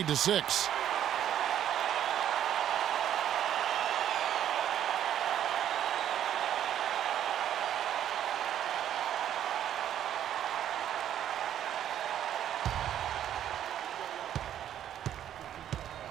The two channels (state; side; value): quieter; left; 10.6 dB